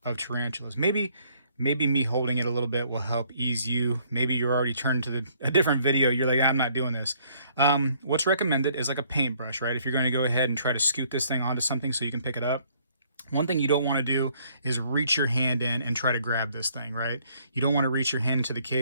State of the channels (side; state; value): both; inverted; correlation -0.64